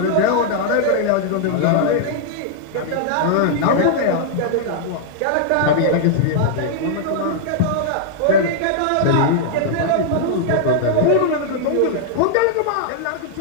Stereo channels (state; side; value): different; both; correlation -0.01